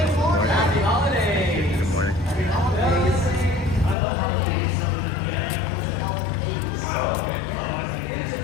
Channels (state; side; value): drops out; right; at 4.0 s